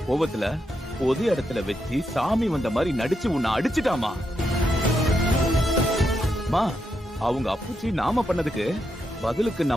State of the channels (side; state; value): both; normal; correlation 0.83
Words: கோவத்துல பொது இடத்துல வச்சு சாமி வந்த மாதிரி நடிச்சு உன்னை அடிச்சுட்டாமா. மா, அவங்க அப்புச்சி நாம பண்ணதுக்கு பதிலுக்கு